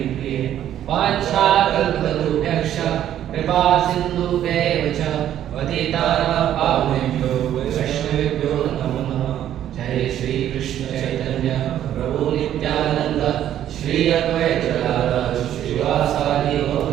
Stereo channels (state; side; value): quieter; left; 11.2 dB